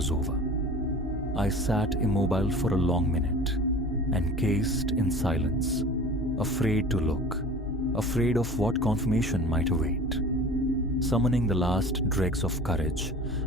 over. I sat immobile for a long minute, encased in silence, afraid to look, afraid of what confirmation might await. Summoning the last dregs of courage,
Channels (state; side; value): normal; both; correlation 0.40